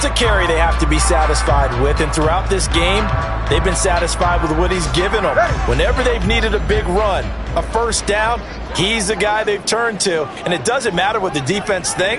a carry they have to be satisfied with. And throughout this game, they've been satisfied with what he's given them. Whenever they've needed a big run, a first down, he's the guy they've turned to. And it doesn't matter what the defense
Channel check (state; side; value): identical; both; correlation 1.00